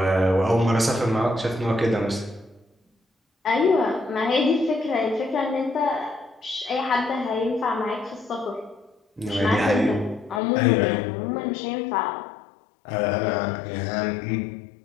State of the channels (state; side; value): drops out; right; at 10.4 s